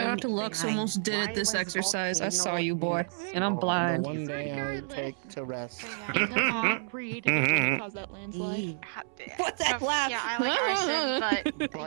out to Lux, almost did it this exercise. I saw you, boy, and I'm blind. One day I take to rest. Read cause that landslide. What's that laugh? Yeah, I like arson,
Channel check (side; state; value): left; silent; 58 dB below the other